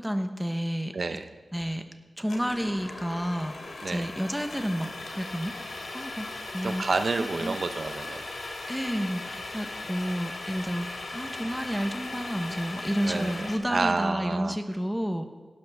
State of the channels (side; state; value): both; normal; correlation 0.97